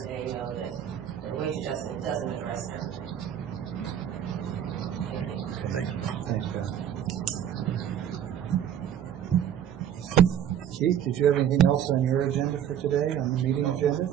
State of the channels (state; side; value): quieter; left; 9.6 dB